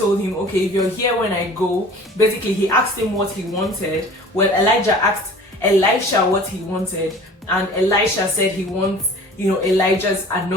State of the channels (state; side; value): normal; both; correlation 0.44